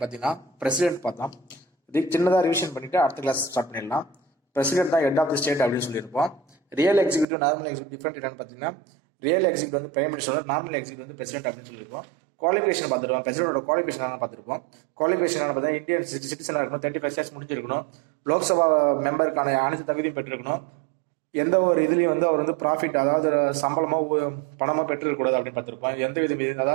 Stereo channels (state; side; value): drops out; left; at 7.2 s